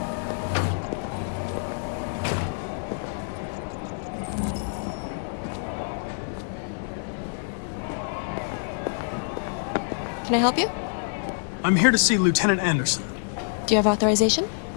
Can I help you? I'm here to see Lieutenant Anderson. Do you have authorization?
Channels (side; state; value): right; silent; 61 dB below the other